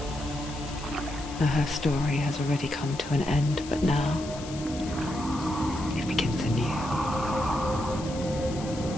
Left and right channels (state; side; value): noise; left; hiss, 14 dB below the sound